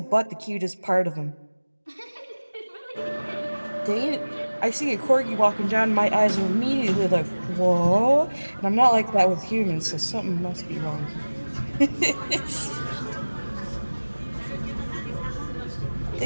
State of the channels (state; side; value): inverted; both; correlation -1.00